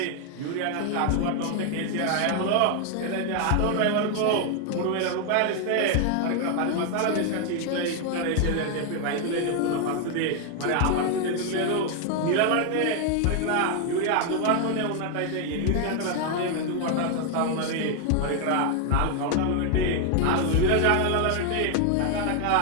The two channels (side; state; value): both; different; correlation 0.00